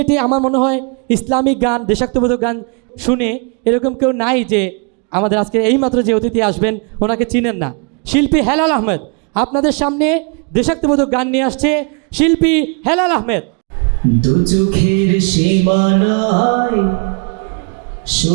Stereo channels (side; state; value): left; quieter; 37.1 dB